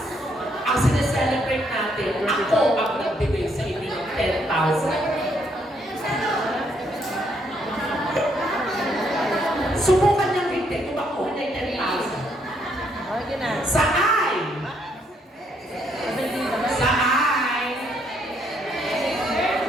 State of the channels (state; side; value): normal; both; correlation 0.72